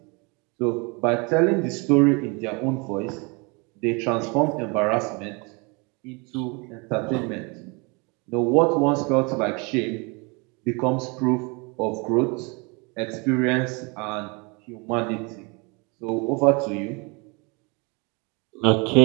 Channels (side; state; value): left; quieter; 30.1 dB